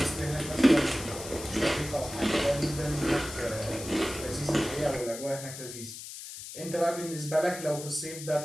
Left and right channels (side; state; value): left; noise; hiss, 11 dB below the sound